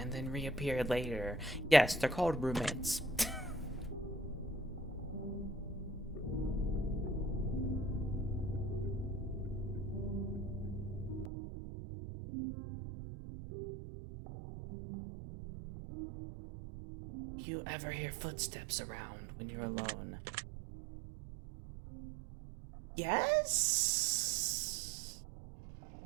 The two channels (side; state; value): left; drops out; at 11.3 s